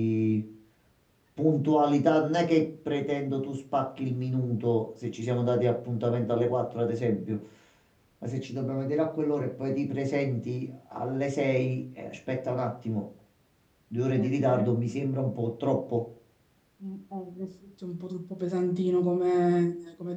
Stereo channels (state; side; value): identical; both; correlation 1.00